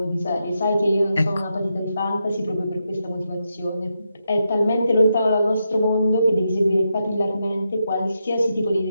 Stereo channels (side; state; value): both; inverted; correlation -0.84